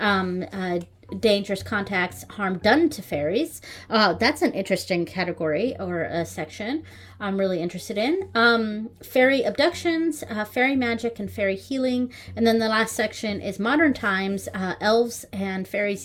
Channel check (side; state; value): both; identical; correlation 1.00